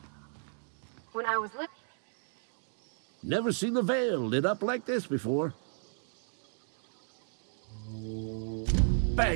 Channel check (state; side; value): silent; left; digital silence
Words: was looking. Never seen the Vale lit up like this before.